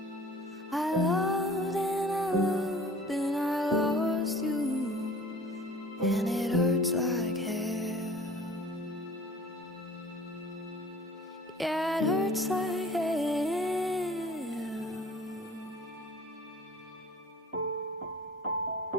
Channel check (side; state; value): both; normal; correlation 0.46